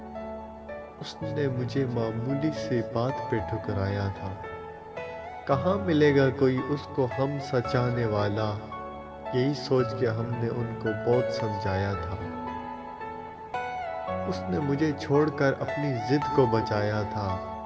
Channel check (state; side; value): identical; both; correlation 1.00